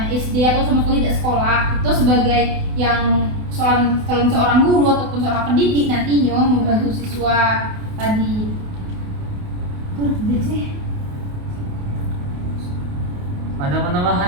SD atau sama sekali tidak sekolah, itu sebagai yang seorang guru ataupun seorang pendidik nantinya membantu siswa tadi. Tuh, sih. Ada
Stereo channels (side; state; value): left; late; 28 ms